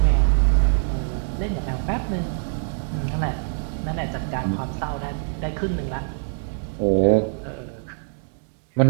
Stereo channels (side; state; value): left; silent; digital silence